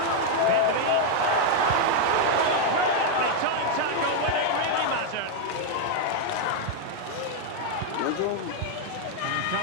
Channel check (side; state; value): both; different; correlation 0.00